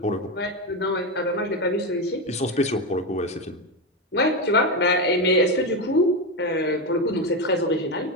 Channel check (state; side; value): normal; both; correlation 0.12